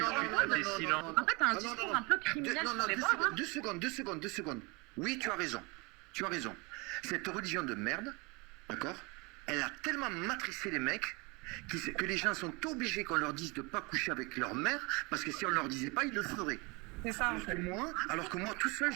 silent. En fait, t'as un discours un peu criminel sur les bords. Deux secondes. Oui, tu as raison. Cette religion de merde, d'accord, elle a tellement matricé les mecs que les gens sont obligés qu'on leur dise de ne pas coucher avec leur mère, parce que si on ne leur disait pas, ils le feraient. C'est ça. Alors que moi, tout seul,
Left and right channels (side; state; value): left; quieter; 27.8 dB